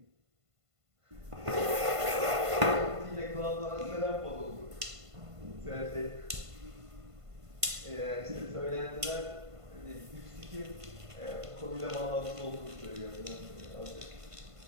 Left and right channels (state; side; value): late; left; 1.5 ms